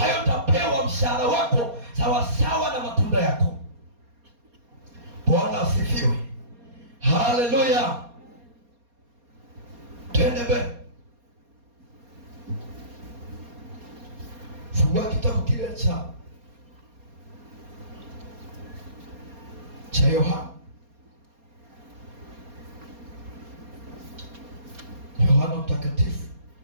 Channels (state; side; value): late; left; 4.2 ms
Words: hiyo utapewa mshahara wako sawasawa na matunda yako. Bwana asifiwe. Haleluya. Twende mbele. Fungua kitabu kile cha Yohana Mtakatifu